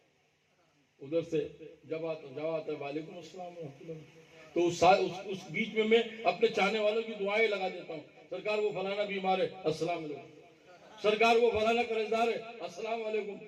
ادھر سے جب آتا ہے وعلیکم السلام ورحمۃ اللہ، تو اس بیچ میں اپنے چاہنے والوں کی دعائیں لگا دیتا ہوں، سرکار وہ فلانا بیمار ہے السلام علیکم، سرکار وہ فلانا قرضدار ہے السلام علیکم،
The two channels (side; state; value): both; identical; correlation 1.00